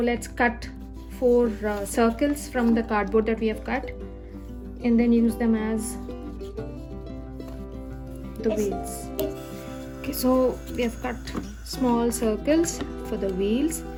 cut 4 circles from the cardboard that we have cut and then use them as the wheels. Okay, so we have cut small circles for the wheels,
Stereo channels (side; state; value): both; identical; correlation 1.00